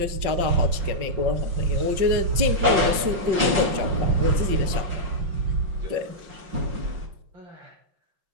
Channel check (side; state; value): left; late; 5.4 ms